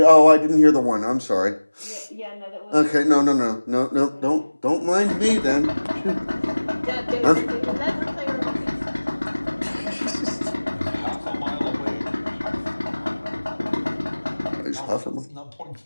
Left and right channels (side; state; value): both; inverted; correlation -1.00